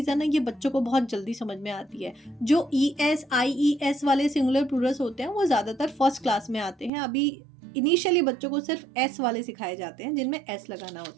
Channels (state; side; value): drops out; left; at 6.9 s